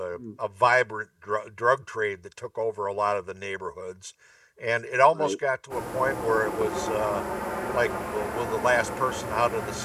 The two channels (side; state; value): both; identical; correlation 1.00